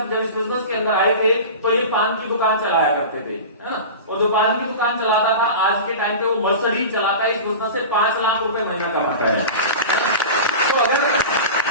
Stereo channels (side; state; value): both; inverted; correlation -0.31